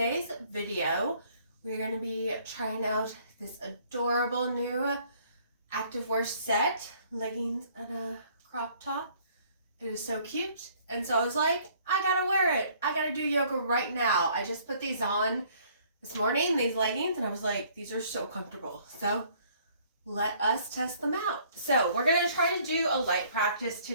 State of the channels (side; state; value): both; inverted; correlation -0.60